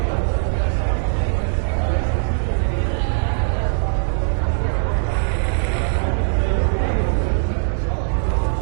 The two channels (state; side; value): silent; left; 57 dB below the other